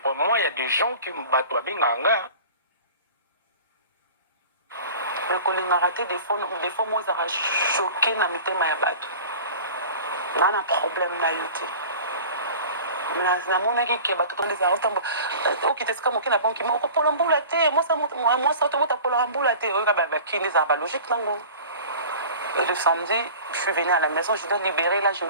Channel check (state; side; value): inverted; both; correlation -0.40